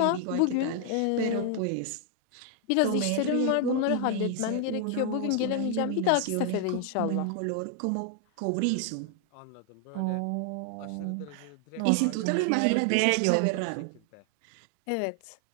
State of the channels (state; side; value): different; both; correlation 0.00